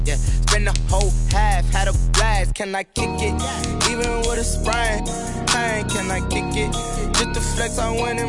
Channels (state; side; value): identical; both; correlation 1.00